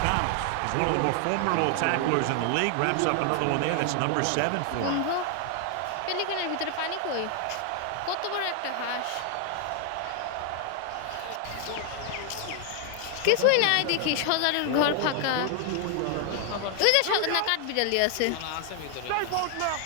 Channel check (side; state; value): both; different; correlation 0.00